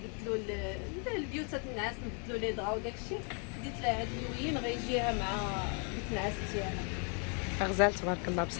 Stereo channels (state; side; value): quieter; right; 39.2 dB